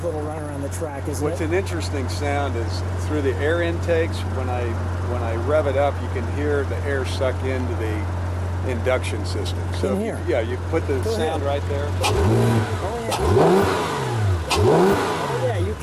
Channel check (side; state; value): both; identical; correlation 1.00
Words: little run around the track, isn't What's it? an interesting sound is through the air intakes. When I rev it up, you can hear the air suck into the induction system. So In here? Yeah, you put the sound right there. Oh yeah, you